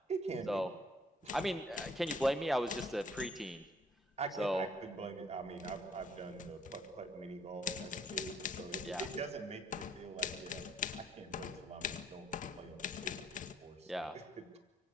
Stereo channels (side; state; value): both; normal; correlation 0.64